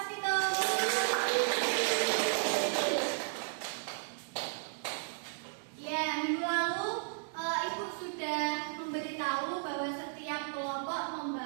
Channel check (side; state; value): left; silent; digital silence